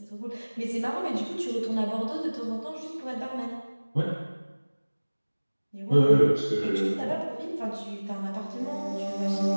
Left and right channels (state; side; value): inverted; both; correlation -1.00